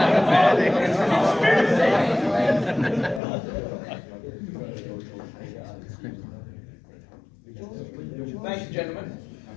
Thank you, gentlemen.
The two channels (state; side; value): drops out; right; at 3.2 s